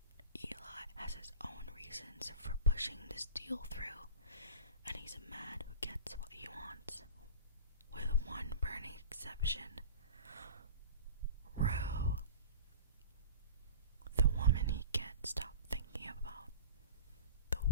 Eli has his own reasons for pushing this deal through, and he's a man who gets what he wants, with one burning exception. Rue, the woman he can't stop thinking about, the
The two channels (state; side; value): inverted; both; correlation -0.37